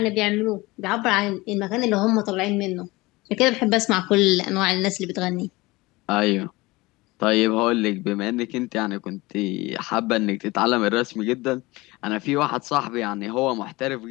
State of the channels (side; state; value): right; quieter; 21.6 dB